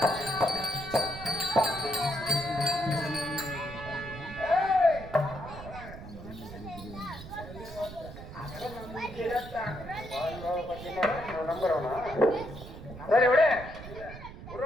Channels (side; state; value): right; noise; rumble, 13 dB below the sound